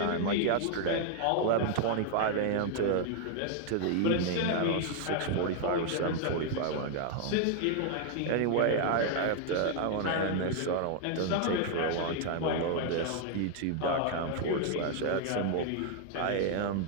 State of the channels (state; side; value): different; both; correlation 0.00